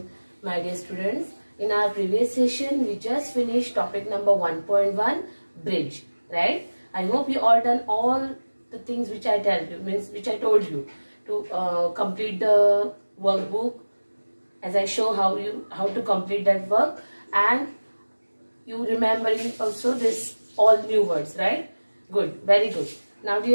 My dear students, in our previous session we just finished topic number 1.1 bridge, right? I hope you all done all the things which I told you to complete the workbook, as I show how to complete that work, and you remembering also this all new words, right? Good, very good. Now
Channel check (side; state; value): both; inverted; correlation -1.00